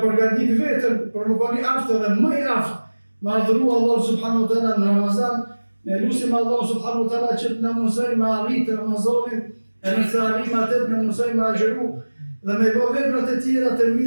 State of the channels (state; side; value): inverted; both; correlation -1.00